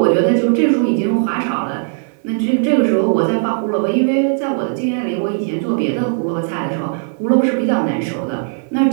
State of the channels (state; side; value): silent; left; 56 dB below the other